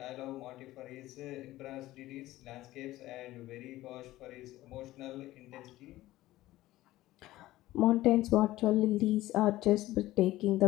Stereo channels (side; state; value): right; quieter; 16.4 dB